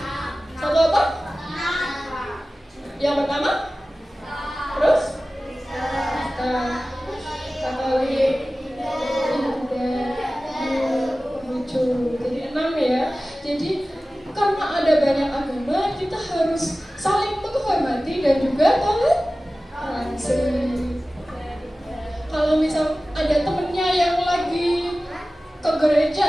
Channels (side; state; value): both; normal; correlation 0.96